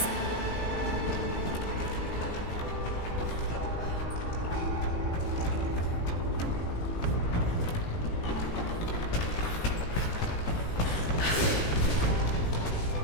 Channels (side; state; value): right; late; 18 ms